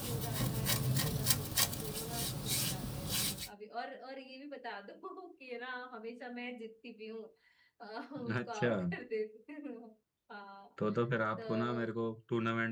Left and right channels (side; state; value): both; identical; correlation 1.00